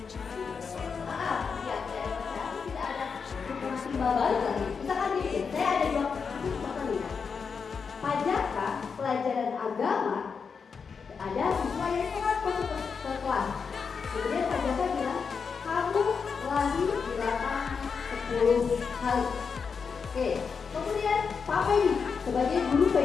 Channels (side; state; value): right; quieter; 5.7 dB